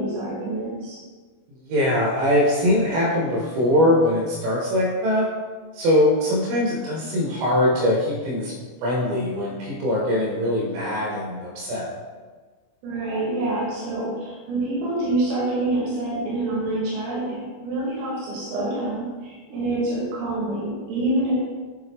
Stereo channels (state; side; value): late; left; 25 ms